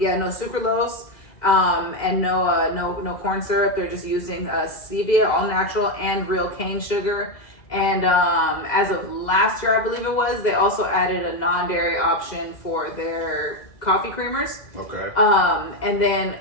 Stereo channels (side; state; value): right; late; 2.0 ms